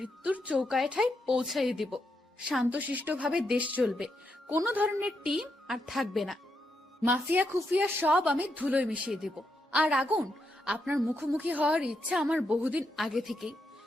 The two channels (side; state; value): both; normal; correlation 0.81